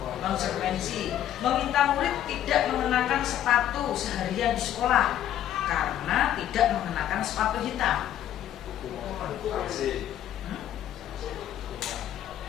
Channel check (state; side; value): quieter; right; 11.4 dB